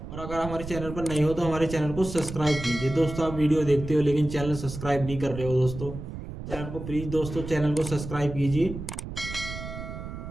और अगर हमारे चैनल पर नए हो तो हमारे चैनल को सब्सक्राइब कीजिए। दोस्तों आप वीडियो देखते हो लेकिन चैनल सब्सक्राइब नहीं कर रहे हो, दोस्तों चैनल को प्लीज़ दोस्तों चैनल को सब्सक्राइब कीजिए।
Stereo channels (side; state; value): right; noise; rumble, 9 dB below the sound